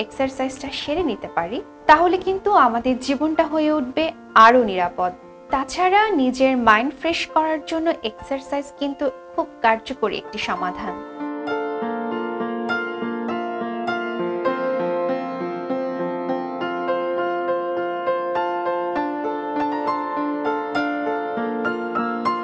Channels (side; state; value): both; identical; correlation 1.00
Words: এক্সারসাইজটা সেরে নিতে পারি, তাহলে কিন্তু আমাদের জীবনটা হয়ে উঠবে আরো নিরাপদ। তাছাড়া নিজের মাইন্ড ফ্রেশ করার জন্য এক্সারসাইজ কিন্তু খুব কার্যকরী একটি সমাধান।